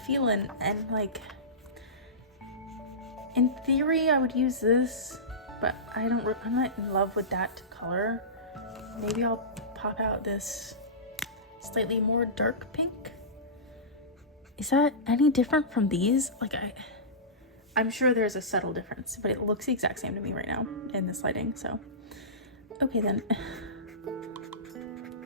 and like, in theory I would use this, but I'm not in love with that color. Maybe I'll pop out this slightly more dark pink. Is that any different from these? Like, I'm sure there's a subtle difference, but it looks the exact same to me right now in this lighting, so. Okay then.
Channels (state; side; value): normal; both; correlation -0.20